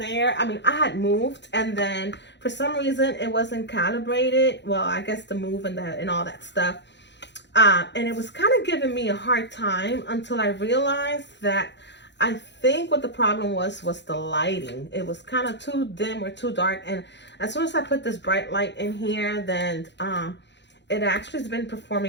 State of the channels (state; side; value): late; right; 0.51 ms